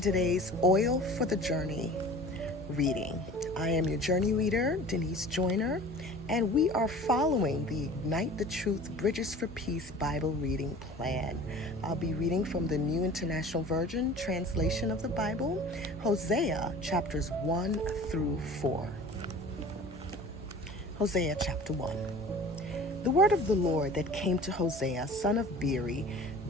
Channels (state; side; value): normal; both; correlation 0.42